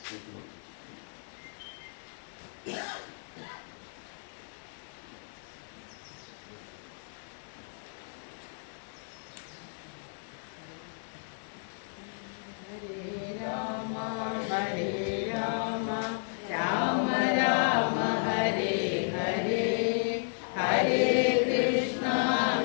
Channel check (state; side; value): silent; right; digital silence